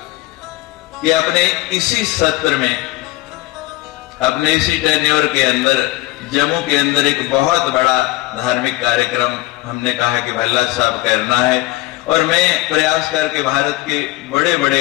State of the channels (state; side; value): quieter; right; 18.6 dB